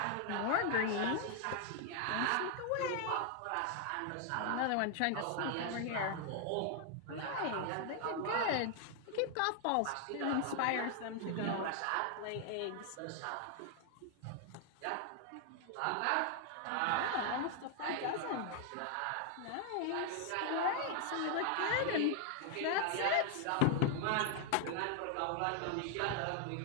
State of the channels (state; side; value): different; both; correlation 0.00